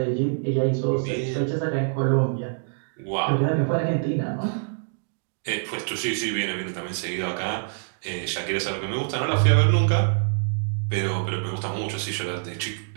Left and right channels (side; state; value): left; silent; digital silence